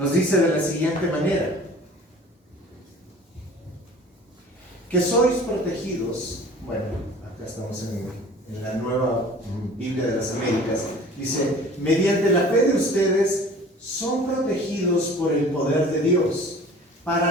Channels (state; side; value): normal; both; correlation 0.46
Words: dice de la siguiente manera: que sois protegidos. Bueno, acá estamos en la Nueva Biblia de las Américas. Dice, mediante la fe de ustedes son protegidos por el poder de Dios para